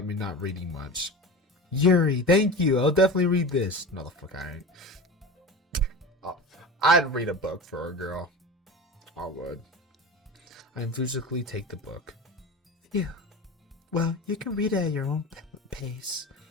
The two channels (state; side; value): normal; both; correlation 0.31